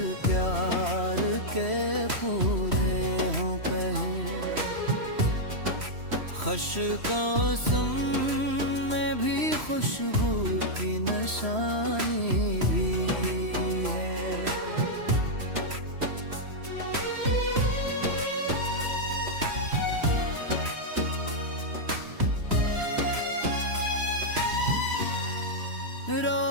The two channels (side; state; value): left; late; 3.1 ms